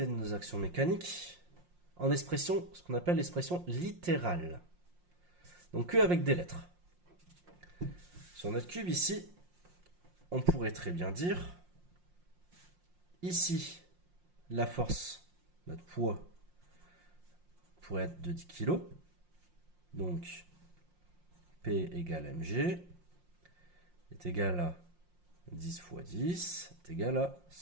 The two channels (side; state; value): left; late; 5.6 ms